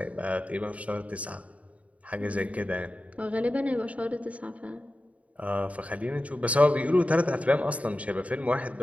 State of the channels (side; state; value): left; late; 0.067 ms